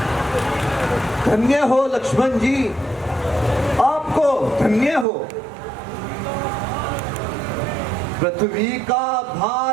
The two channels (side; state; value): left; drops out; at 5.1 s